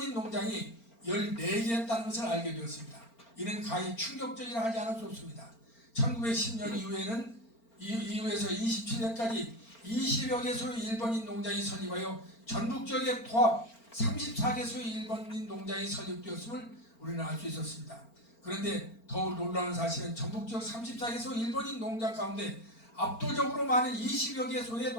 농장이 14개였다는 것을 알게 되었습니다. 이는 가히 충격적이라 하지 않을 수 없습니다. 1910년 이후에서 27년까지 20여 개소의 일본인 농장이 설립하여 전국 지역에 도합 34개소의 일본인 농장이 설립되었음을 우리는 알 수 있었습니다. 그런데 더욱 놀라운 사실은 전국 지역 34개소 일본인 농장 가운데 압도적으로 많은 20여 개소의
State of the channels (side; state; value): right; late; 4.4 ms